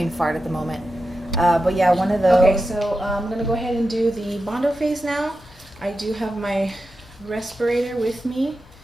fart at the moment. But yeah, one of those. Okay, so I'm going to go ahead and do the bondo phase now. I do have my respirator with me.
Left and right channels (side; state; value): both; normal; correlation 0.90